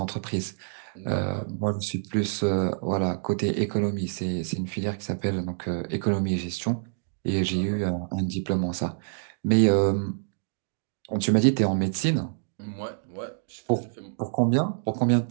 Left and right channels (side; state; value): left; silent; digital silence